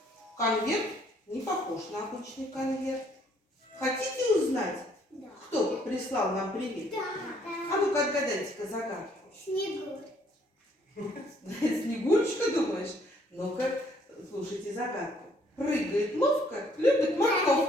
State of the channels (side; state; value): both; normal; correlation 0.65